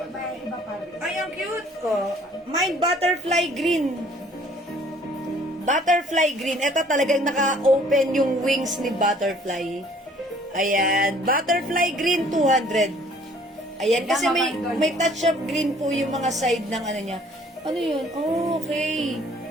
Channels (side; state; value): both; normal; correlation 0.57